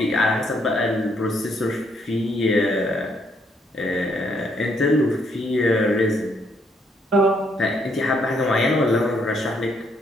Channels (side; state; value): both; normal; correlation 0.72